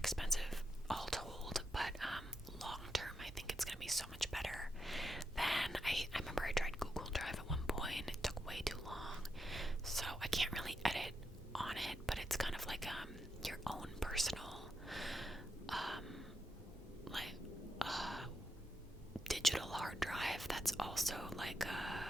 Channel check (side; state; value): both; normal; correlation 0.85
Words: all told, but long term I think it's gonna be so much better than I remember I tried Google Drive at one point. It took way too long, so I can't really edit on it, but it's kind of like your own personal digital hard drive that's also like